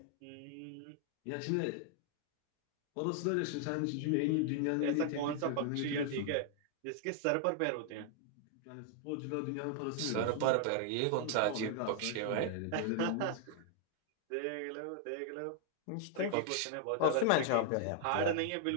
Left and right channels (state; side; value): different; both; correlation 0.00